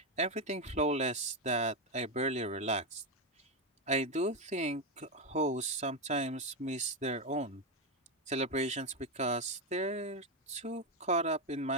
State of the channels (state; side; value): normal; both; correlation 0.08